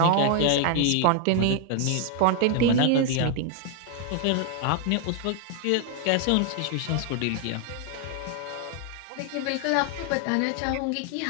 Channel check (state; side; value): different; both; correlation 0.00